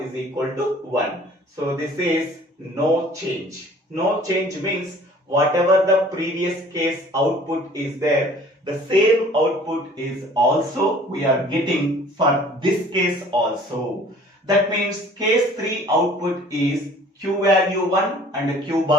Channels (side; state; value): both; normal; correlation 0.51